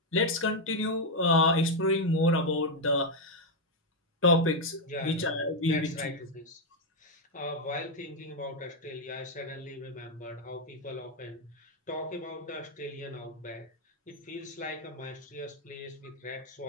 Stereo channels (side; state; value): both; normal; correlation 0.02